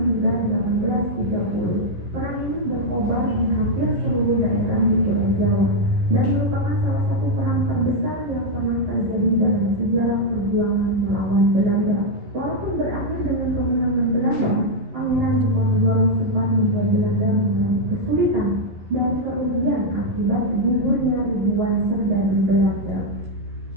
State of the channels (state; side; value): late; left; 11 ms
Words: hingga 1830. Perang ini berkobar di hampir seluruh daerah di Pulau Jawa dan merupakan salah satu perang terbesar yang pernah terjadi dalam sejarah perjuangan melawan Belanda. Walaupun berakhir dengan kemenangan Belanda, Pangeran Diponegoro sempat membuat Belanda mengalami kesulitan dan kerugian akibat gugurnya ribuan serdadu Belanda.